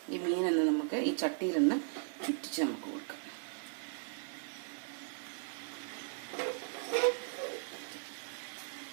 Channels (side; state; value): left; silent; digital silence